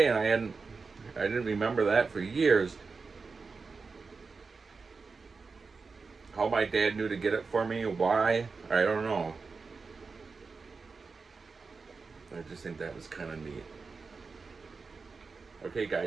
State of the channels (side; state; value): left; quieter; 4.5 dB